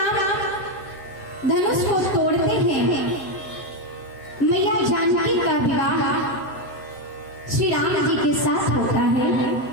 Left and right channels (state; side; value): late; right; 7.5 ms